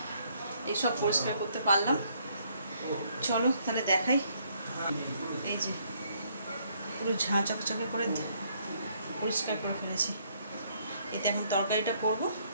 এইসব পরিষ্কার করতে পারলাম। চলো তাহলে দেখাই। এই যে পুরো ঝাঁ চকচকে করে পরিষ্কার করে ফেলেছি। এতে এখন তরকারিটা করবো।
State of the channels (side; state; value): both; inverted; correlation -0.68